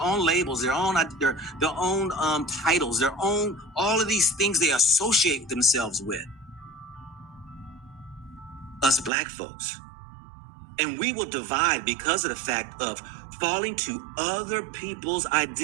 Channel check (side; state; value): left; drops out; at 9.1 s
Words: labels, their own titles, their own, all of these things they associate themselves with. Us black folks. And we will divide because of the fact of falling to other people's